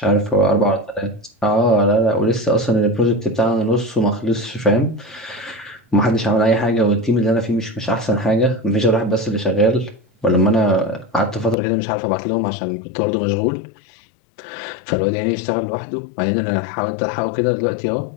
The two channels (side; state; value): right; drops out; at 11.6 s